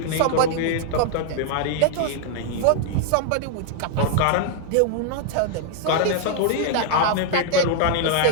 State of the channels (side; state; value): both; different; correlation 0.00